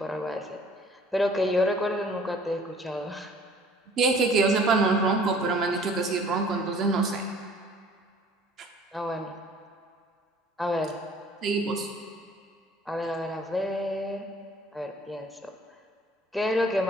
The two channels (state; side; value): normal; both; correlation 0.53